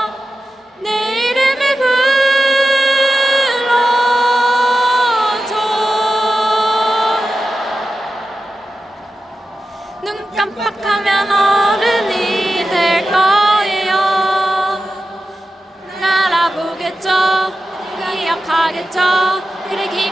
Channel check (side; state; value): both; normal; correlation 0.92